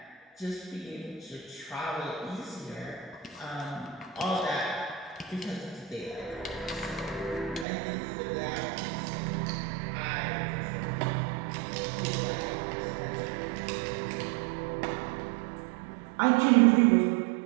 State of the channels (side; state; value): left; drops out; at 7.7 s